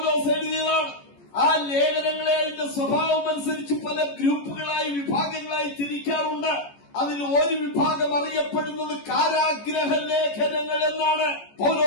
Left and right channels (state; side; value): late; right; 14 ms